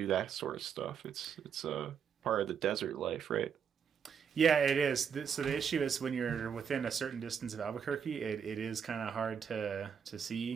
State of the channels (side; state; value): left; quieter; 7.3 dB